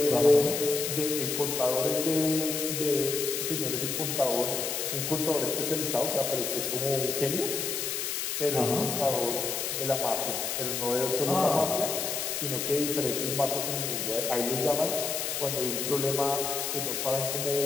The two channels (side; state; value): left; noise; hiss, 2 dB below the sound